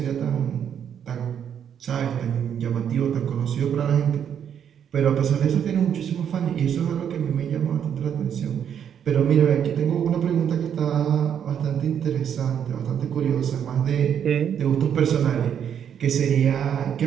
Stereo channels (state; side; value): quieter; left; 8.6 dB